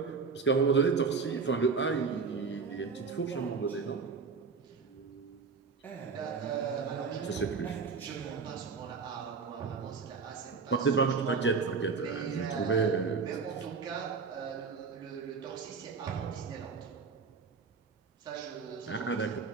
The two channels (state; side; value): quieter; left; 5.1 dB